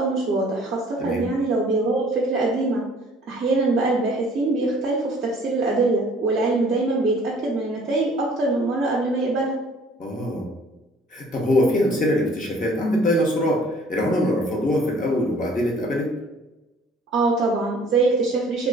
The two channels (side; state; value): both; normal; correlation 0.54